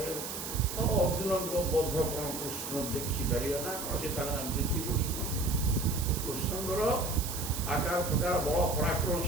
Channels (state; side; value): noise; right; hiss, 6 dB below the sound